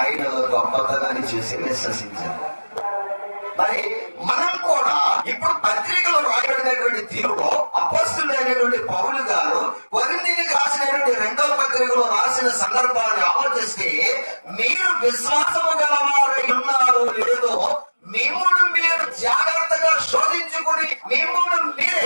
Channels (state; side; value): inverted; both; correlation -1.00